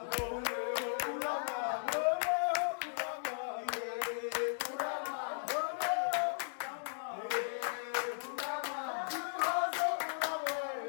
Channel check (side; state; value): right; silent; digital silence